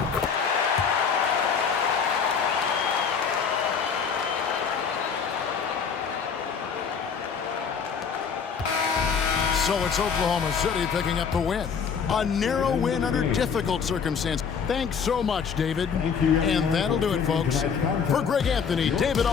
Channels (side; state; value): right; quieter; 6.4 dB